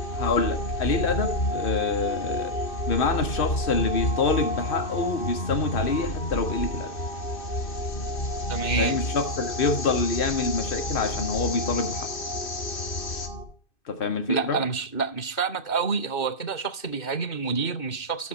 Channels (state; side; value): late; right; 2.6 ms